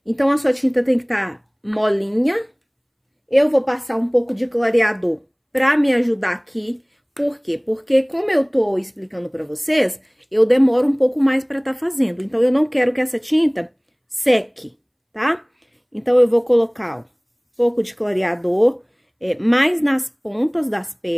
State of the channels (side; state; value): both; identical; correlation 1.00